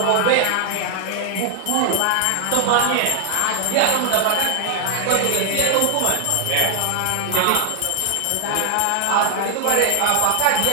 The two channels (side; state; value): both; different; correlation 0.00